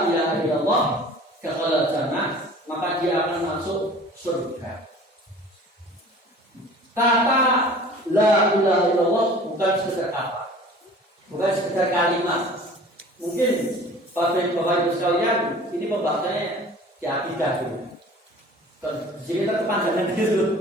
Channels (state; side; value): normal; both; correlation 0.45